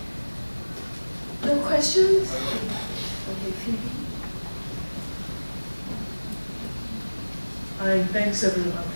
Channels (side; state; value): both; inverted; correlation -1.00